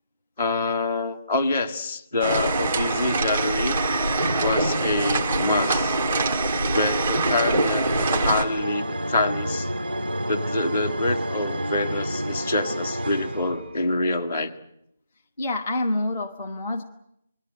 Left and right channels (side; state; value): both; inverted; correlation -0.70